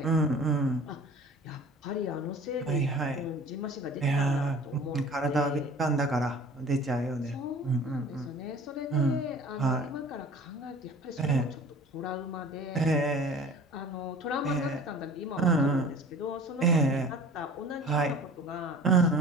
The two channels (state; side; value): normal; both; correlation 0.45